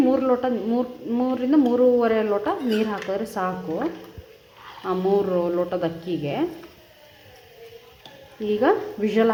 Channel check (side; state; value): both; identical; correlation 1.00